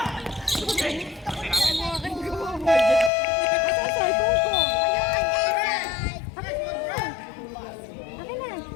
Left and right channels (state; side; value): drops out; right; at 3.1 s